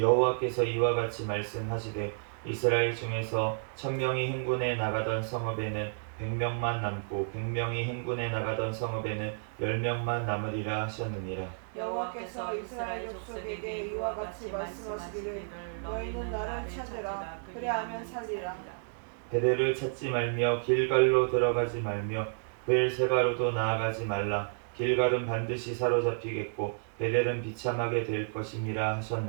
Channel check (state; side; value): silent; left; digital silence